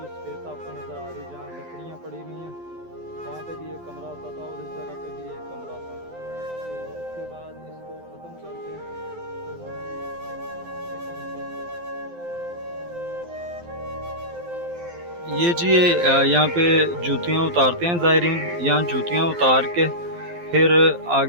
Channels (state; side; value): late; left; 12 ms